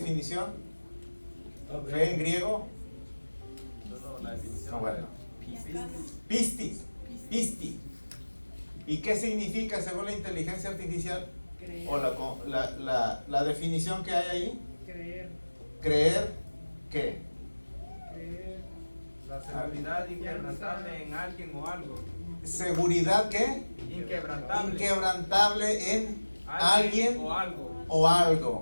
¿Fe en griego? No, la definición. No, bueno. Pistis. Pisti. ¿Y qué significa según la inteligencia artificial? Creer. O la definición que hay ahí. Creer. Creer ¿qué? Creer. La seguridad inquebrantable en alguien o algo. Seguridad ¿qué? Inquebrantable. Inquebrantable en alguien o algo. o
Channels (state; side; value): inverted; both; correlation -1.00